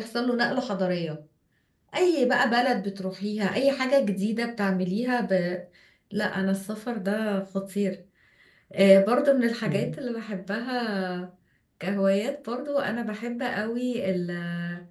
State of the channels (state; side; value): identical; both; correlation 1.00